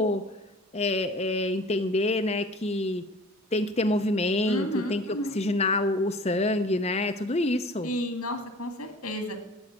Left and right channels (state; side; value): normal; both; correlation 0.45